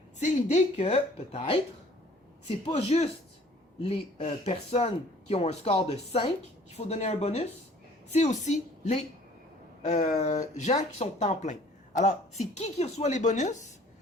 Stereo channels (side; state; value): both; normal; correlation 0.54